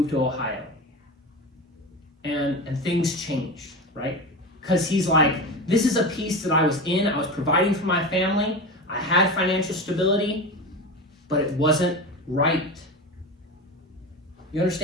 to Ohio. And things changed, right? Because he's like, this is a piece that I was in. I was providing for my family. I had financial stability, but it wasn't right. You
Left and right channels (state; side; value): normal; both; correlation 0.25